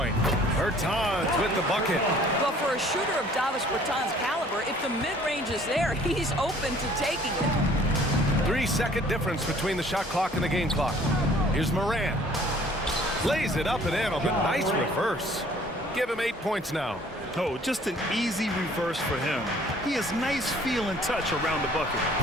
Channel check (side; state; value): both; normal; correlation 0.55